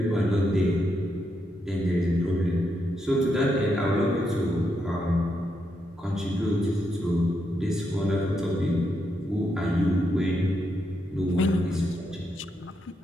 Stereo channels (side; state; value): both; normal; correlation 0.81